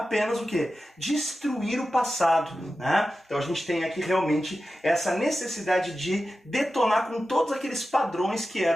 o quê? Destruir o passado, Então a gente tem aqui realmente essa necessidade de detonar com todos aqueles padrões que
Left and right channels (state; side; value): normal; both; correlation 0.93